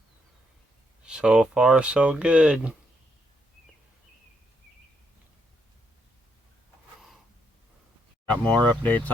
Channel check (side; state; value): both; normal; correlation 0.76